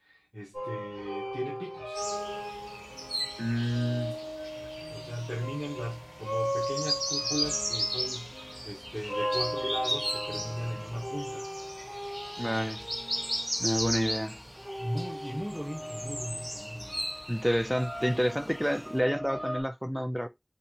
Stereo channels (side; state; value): both; identical; correlation 1.00